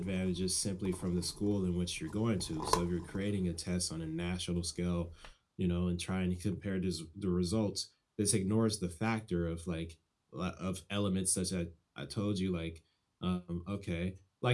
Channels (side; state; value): both; identical; correlation 1.00